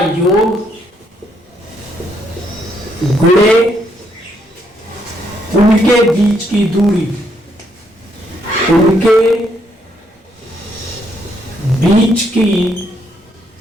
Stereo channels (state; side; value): normal; both; correlation 0.73